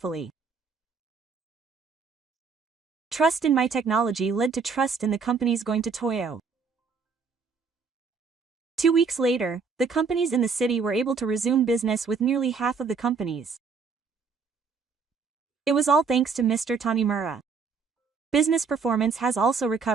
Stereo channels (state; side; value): quieter; left; 5.2 dB